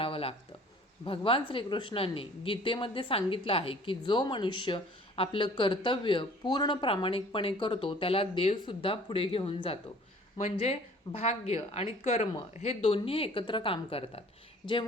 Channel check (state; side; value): normal; both; correlation 0.51